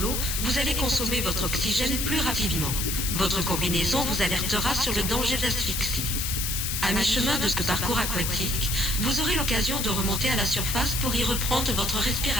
vous allez consommer votre oxygène plus rapidement. Votre combinaison vous alertera sur le danger d'asphyxie. À mi-chemin de ce parcours aquatique, vous aurez l'occasion de remonter à la surface pour y reprendre votre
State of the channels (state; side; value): noise; left; hiss, 1 dB below the sound